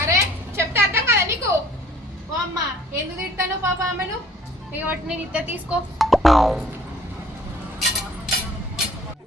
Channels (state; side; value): normal; both; correlation 0.54